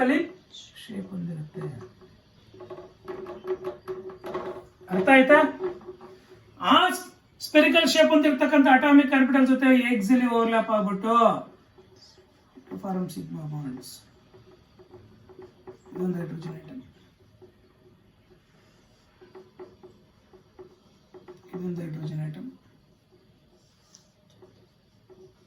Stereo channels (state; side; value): identical; both; correlation 1.00